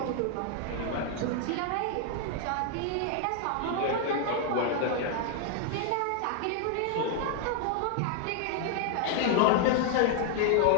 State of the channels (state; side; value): different; both; correlation 0.00